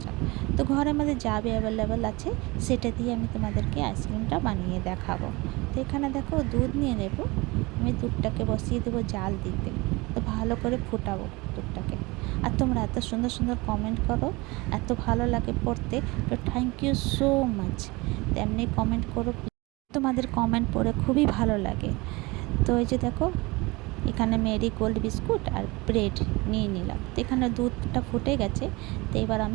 যাক। তো ঘরের মধ্যে যা অ্যাভেলেবেল আছে সেটা দিয়ে আমি তোমাদেরকে আইসক্রিমটা বানিয়ে দেখাবো। তো এখানে দেখো দুধ নিয়ে নেব। আমি দুধটাকে বসিয়ে দেবো জাল দিতে। তো ভালো করে ফুটাবো দুধটাকে। আর তোমরা এত সুন্দর সুন্দর কমেন্ট করো, এত ভালো লাগে পড়তে। তো থ্যাংক ইউ সো মাচ। তেমনি কমেন্ট করো, তোমাদের কমেন্ট পড়ে খুবই ভালো লাগে। তো এই যে দেখো, এখানে মেরি গোল্ড বিস্কুট আর ব্রেড নিয়ে নিলাম। তো এখানে দুধটা ফুটে গেছে। তো এবার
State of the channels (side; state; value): left; quieter; 23.8 dB